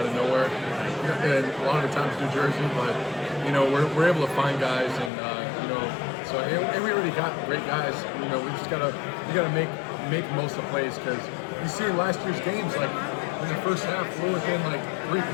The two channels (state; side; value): drops out; right; at 5.1 s